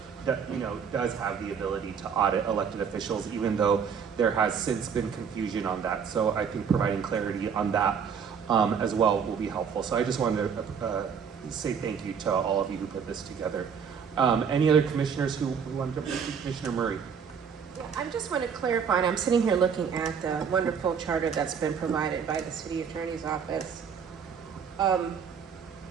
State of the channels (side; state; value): left; quieter; 6.9 dB